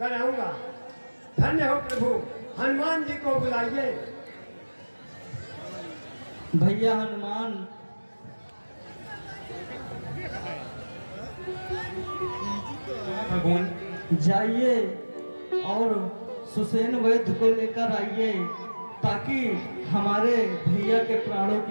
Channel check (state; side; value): inverted; both; correlation -1.00